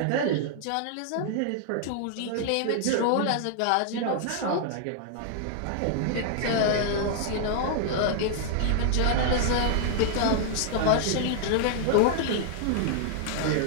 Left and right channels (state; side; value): different; both; correlation -0.01